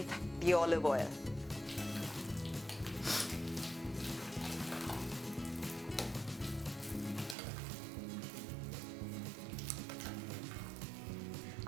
the olive oil.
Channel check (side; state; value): left; drops out; at 7.4 s